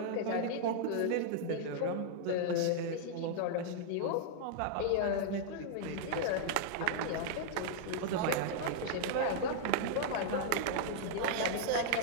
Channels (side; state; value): both; different; correlation -0.01